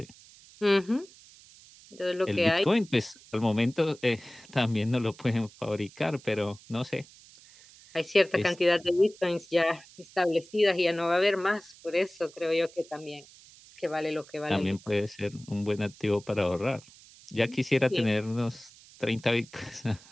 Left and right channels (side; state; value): right; noise; hiss, 23 dB below the sound